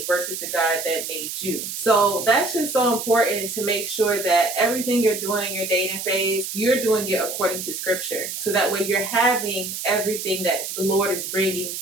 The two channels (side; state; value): right; noise; hiss, 6 dB below the sound